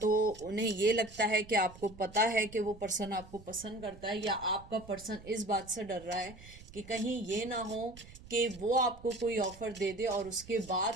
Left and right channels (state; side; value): noise; right; rumble, 19 dB below the sound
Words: उन्हें ये लगता है कि आपको पता है कि वो पर्सन आपको पसंद करता है, या आपका पर्सन इस बात से डर रहा है कि कहीं ये ना हो कि वो आपको कोई ऑफर दे दे और उसके बाद